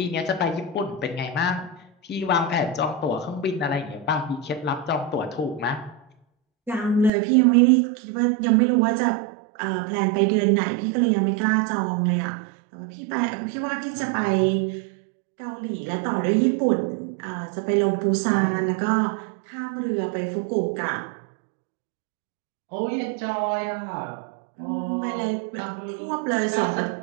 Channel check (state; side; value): drops out; left; at 7.1 s